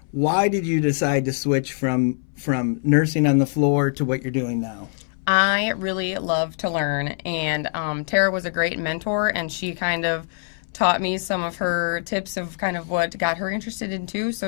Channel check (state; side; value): silent; right; 60 dB below the other